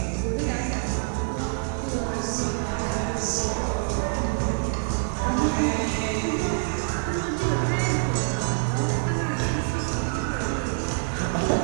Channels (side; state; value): left; silent; digital silence